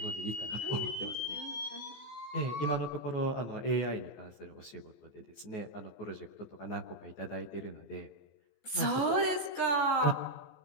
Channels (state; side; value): late; right; 14 ms